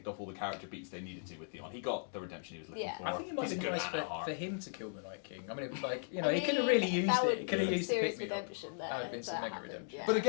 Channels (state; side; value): silent; right; digital silence